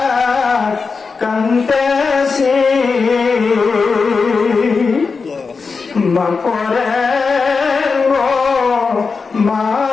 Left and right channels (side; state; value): right; quieter; 4.8 dB